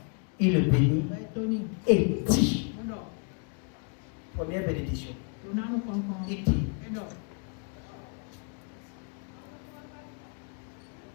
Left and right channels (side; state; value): right; quieter; 37.8 dB